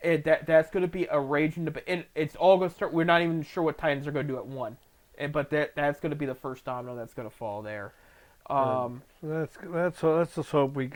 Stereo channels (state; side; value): identical; both; correlation 1.00